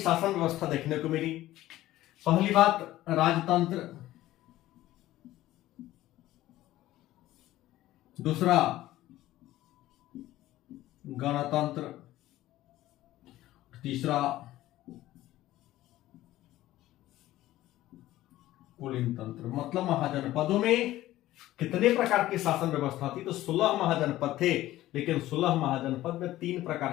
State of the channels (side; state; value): right; quieter; 15.3 dB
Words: व्यवस्था देखने को मिली। पहली बात, राजतंत्र। दूसरा गणतंत्र, तीसरा कुलीन तंत्र। मतलब महाजनपदों में कितने प्रकार की शासन व्यवस्था थी? तो 16 महाजनपद थे, लेकिन 16 महाजनपद में 3